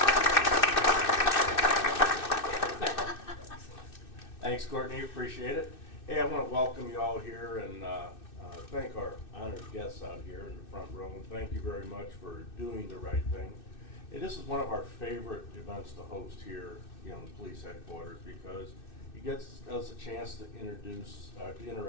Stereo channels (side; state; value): right; late; 2.6 ms